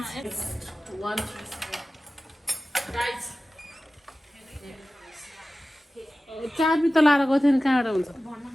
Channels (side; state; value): both; normal; correlation 0.96